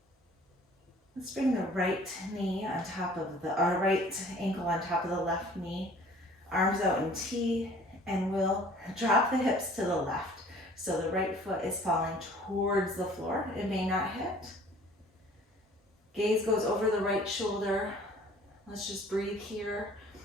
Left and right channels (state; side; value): normal; both; correlation 0.51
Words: Let's bring the right knee on top of our right ankle on top of the left knee. Arms out in T, and we'll drop the hips to the left. So the right foot is falling towards the floor. It may not hit. Gaze goes over the right shoulder. Let's just breathe here.